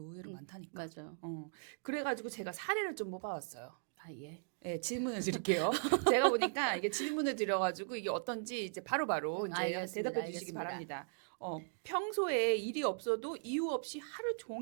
많다니까. 맞아요. 그래가지고 제가 사례를 좀 뽑아왔어요. 아 예. 네, 질문을 드릴게요. 제가 보니까 이게 질문을 드려가지고 이게 어떤지 이제 바로바로 이제 알겠습니다. 대답해 주시기 알겠습니다. 바랍니다. 평소에 일이 없어도 이유 없이 하루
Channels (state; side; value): silent; left; digital silence